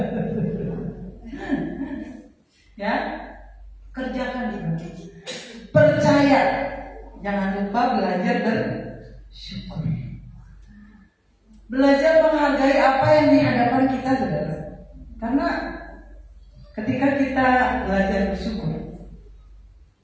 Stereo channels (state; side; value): identical; both; correlation 1.00